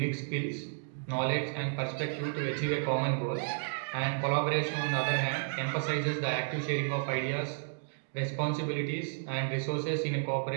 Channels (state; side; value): silent; left; digital silence